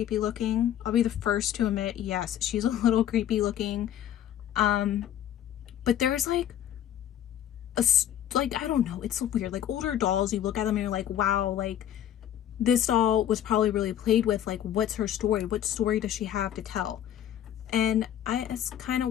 looking. I'll be the first to admit, yes, she's a little creepy looking. But there's like I don't know, it's so weird. Like older dolls, you look at them and you're like, wow, like this doll was probably really played with. Like, what's her story? What story does she have to tell? And it's kind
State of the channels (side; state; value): right; quieter; 10.9 dB